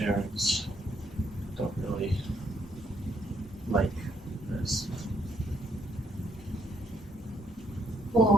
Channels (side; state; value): both; normal; correlation 0.71